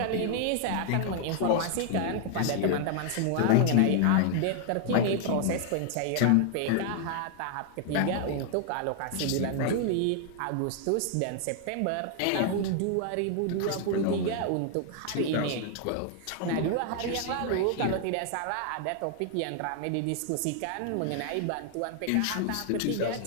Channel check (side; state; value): both; different; correlation 0.00